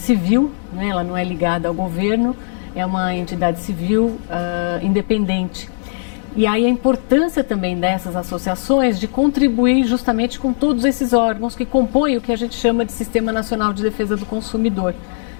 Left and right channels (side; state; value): right; silent; digital silence